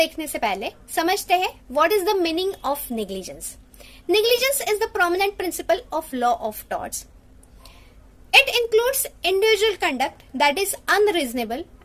से पहले समझते हैं what is the meaning of negligence. Negligence is the prominent principle of law of torts. It includes individual conduct that is unreasonable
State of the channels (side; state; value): both; identical; correlation 1.00